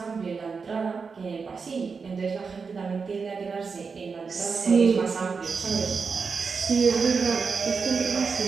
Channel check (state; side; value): quieter; left; 5.2 dB